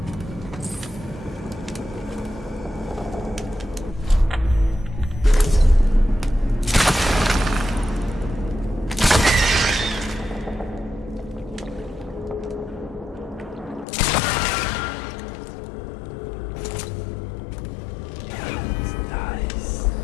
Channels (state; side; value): drops out; right; at 13.9 s